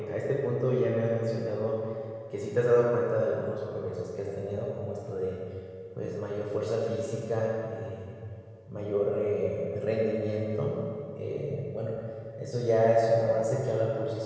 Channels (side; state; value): both; identical; correlation 1.00